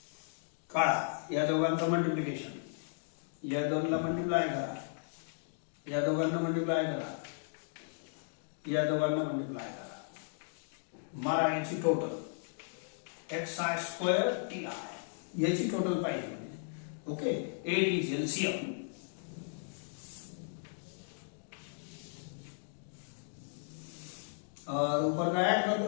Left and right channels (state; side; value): silent; right; digital silence